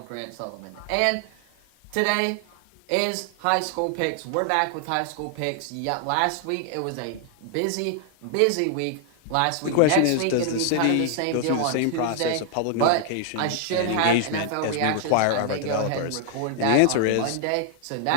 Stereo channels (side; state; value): both; different; correlation 0.00